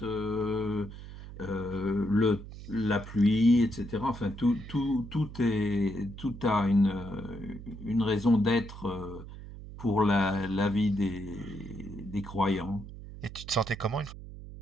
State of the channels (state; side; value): noise; right; hum, 13 dB below the sound